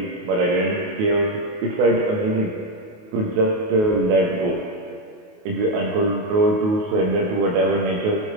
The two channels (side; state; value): left; late; 28 ms